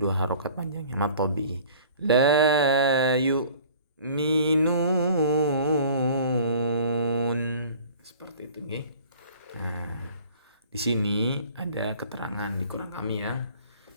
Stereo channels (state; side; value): inverted; both; correlation -0.48